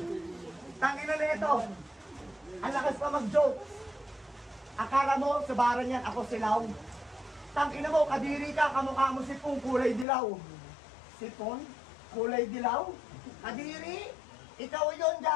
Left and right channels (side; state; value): right; drops out; at 10.1 s